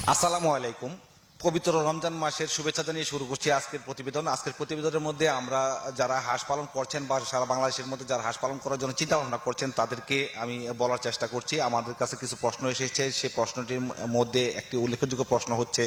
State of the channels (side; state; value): both; identical; correlation 1.00